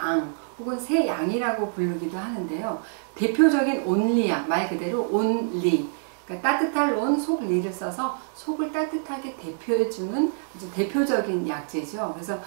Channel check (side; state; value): left; silent; digital silence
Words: 혹은 새양이라고 부르기도 하는데요. 대표적인 온리약, 말 그대로 온리, 그러니까 따뜻할 온, 속리를 써서 속을 따뜻하게 대표해주는 아주 대표적인 약재죠. 그래서